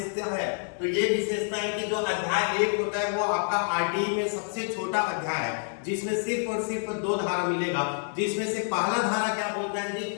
है। तो ये विशेषता है कि जो अध्याय 1 होता है वो आपका आरटीई में सबसे छोटा अध्याय है, जिसमें सिर्फ और सिर्फ 2 धारा मिलेगा, जिसमें से पहला धारा क्या बोलता है जी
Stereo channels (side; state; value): right; silent; 59 dB below the other